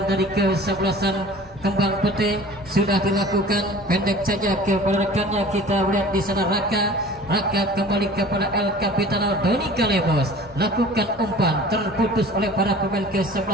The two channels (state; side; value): normal; both; correlation 0.44